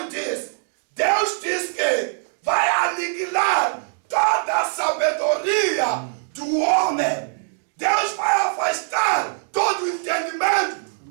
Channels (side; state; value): left; silent; 56 dB below the other